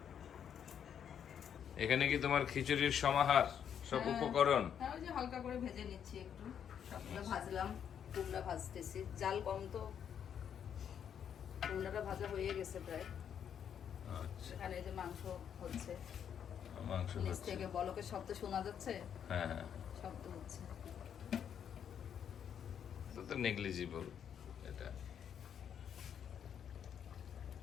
এখানে কি তোমার খিচুড়ির সমাহার, সব হ্যাঁ। উপকরণ? হ্যাঁ, ওই যে হালকা করে ভেজে নিচ্ছি একটু, সবগুলো ভাজলাম, কুমড়া ভাজতেছি, জাল কম তো, কুমড়াটা ভাজা হয়ে গেছে প্রায়। আচ্ছা, এখানে এই যে মাংস হচ্ছে, মাংস নিচ হচ্ছে। থেকে বলকের শব্দ শোনা যাচ্ছে, হ্যাঁ হ্যাঁ, শব্দ হচ্ছে। তো নেগলিজিবল। এটা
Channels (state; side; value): quieter; right; 8.5 dB